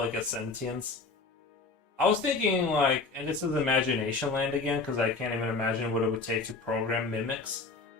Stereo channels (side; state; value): right; quieter; 3.9 dB